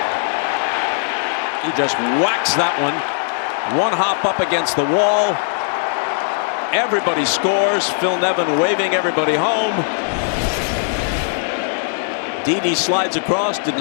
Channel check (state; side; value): silent; right; digital silence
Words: He just whacks that one. One hop up against the wall. Everybody scores. Phil Nevin waving everybody home. Didi slides across,